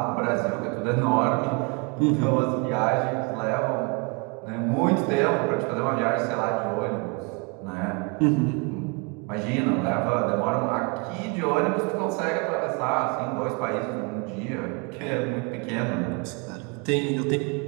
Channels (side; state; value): left; quieter; 31.9 dB